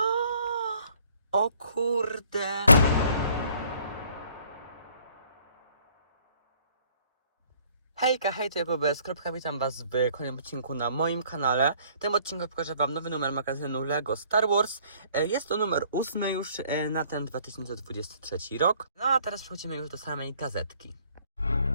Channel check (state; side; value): inverted; both; correlation -0.60